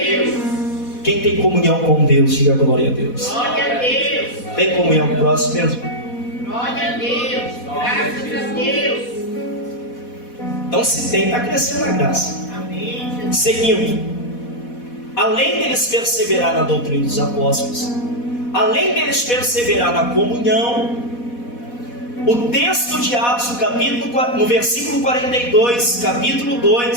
Quem tem comunhão com Deus, diga glória a Deus. Glória a Deus. Tem comunhão com o próximo mesmo? Glória a Deus. Graças a Deus. Então se tem, está crescendo na graça. Amém. Seguindo, além deles perseverar na doutrina dos apóstolos, além deles perseverar na comunhão, o texto de Atos, no versículo 42, capítulo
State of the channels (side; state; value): right; late; 4.1 ms